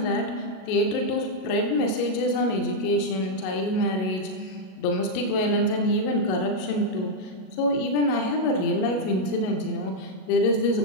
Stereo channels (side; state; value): right; late; 37 ms